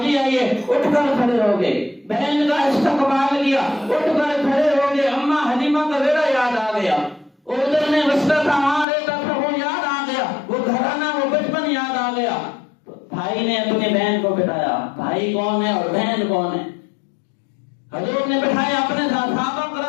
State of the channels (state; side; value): drops out; right; at 8.8 s